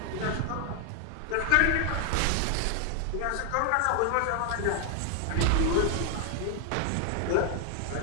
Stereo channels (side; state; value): both; different; correlation 0.00